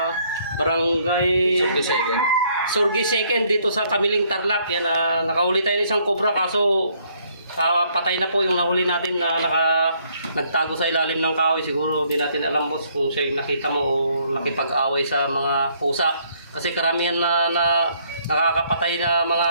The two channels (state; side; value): inverted; both; correlation -0.67